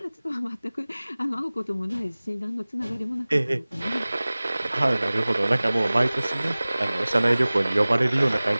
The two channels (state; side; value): inverted; both; correlation -0.99